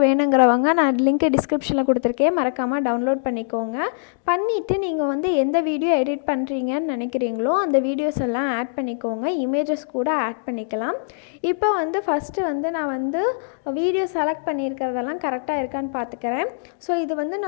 வேணுங்கிறவங்க நான் லிங்க் டிஸ்கிரிப்ஷனில் கொடுத்துருக்கேன், மறக்காமல் டவுன்லோட் பண்ணிக்கோங்க. பண்ணிவிட்டு நீங்கள் வந்து எந்த வீடியோ எடிட் பண்ணுறீங்கன்னு நினைக்கிறீங்களோ அந்த வீடியோஸ் எல்லாம் ஆட் பண்ணிக்கோங்க. இமேஜஸ் கூட ஆட் பண்ணிக்கலாம். இப்போ வந்து ஃபஸ்ட்டு வந்து நான் வந்து வீடியோ செலக்ட் பண்ணியிருக்கிறதெல்லாம் கரெக்டாக இருக்கான்னு பார்த்துக்கிறேன். ஸோ இது வந்து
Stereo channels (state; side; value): silent; right; digital silence